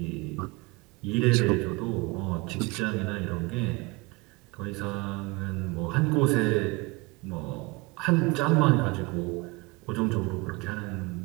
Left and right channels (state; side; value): quieter; left; 25.2 dB